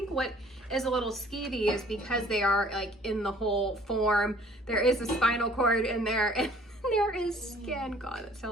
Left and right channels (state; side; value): normal; both; correlation 0.55